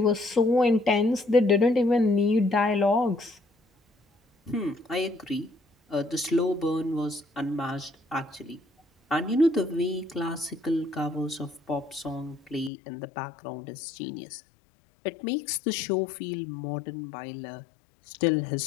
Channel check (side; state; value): right; drops out; at 12.7 s